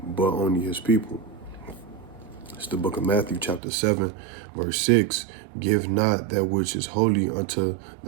but only his people." It's the book of Matthew, chapter 7, verse 6. "Give not that which is holy unto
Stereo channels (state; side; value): drops out; left; at 3.6 s